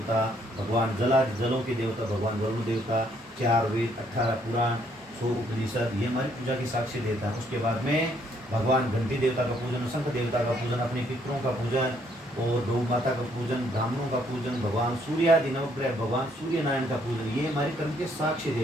भगवान जलों के देवता, भगवान वरुण देवता, 4 वेद, 18 पुराण, 100 उपनिषद, ये हमारी पूजा की साक्षी देवता है। उसके बाद में भगवान घंटी देवता का पूजन, शंख देवता का पूजन, अपने पितरों का पूजन और गौ माता का पूजन, ब्राह्मणों का पूजन, भगवान सूर्यादि नवग्रह, भगवान सूर्य नारायण का पूजन, ये हमारे कर्म के साक्षी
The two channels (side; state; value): both; normal; correlation 0.68